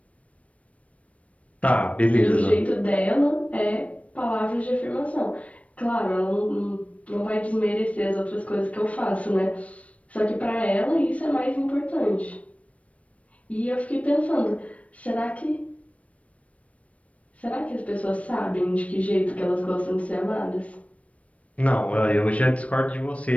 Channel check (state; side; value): late; right; 0.065 ms